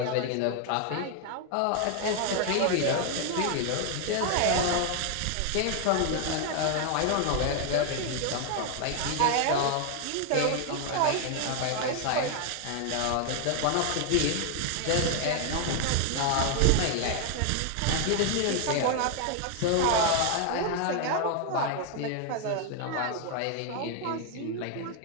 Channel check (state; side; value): different; both; correlation 0.00